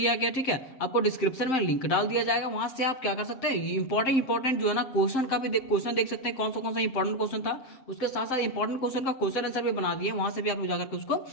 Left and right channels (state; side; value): late; right; 7.7 ms